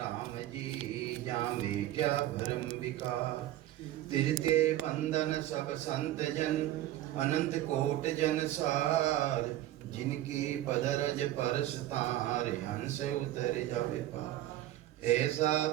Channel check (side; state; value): left; quieter; 14.0 dB